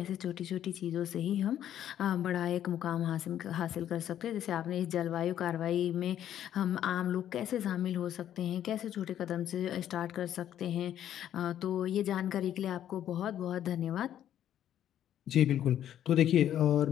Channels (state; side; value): quieter; right; 10.9 dB